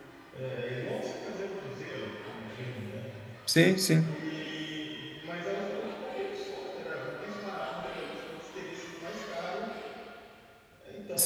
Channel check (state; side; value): identical; both; correlation 1.00